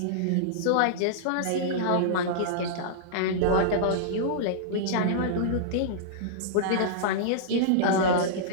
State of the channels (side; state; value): both; different; correlation -0.02